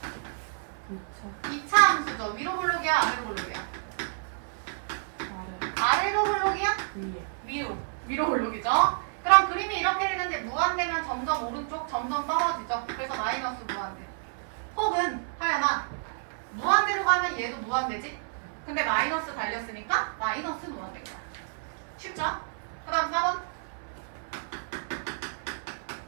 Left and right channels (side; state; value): left; silent; 58 dB below the other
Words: 2차 함수죠. 위로 블록이야? 아래로 블록이야? 아래로 블록이야? 위로 블록이죠. 그럼 그림이 이렇게 되는데 무한대면 점점 오른쪽 점점 떨어지죠. 그래서 마이너스 무한대. 혹은 하연아 무한대로 가면 얘도 무한대지? 근데 마이너스 달렸으니까 마이너스 무한대인 거야. 쉽죠? 그 다음 4번.